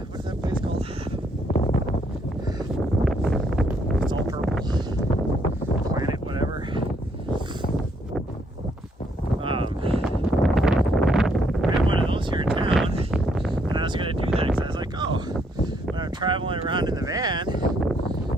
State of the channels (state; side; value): normal; both; correlation 0.71